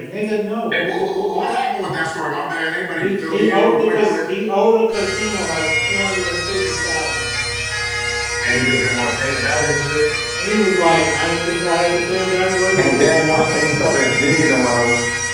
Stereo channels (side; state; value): both; identical; correlation 1.00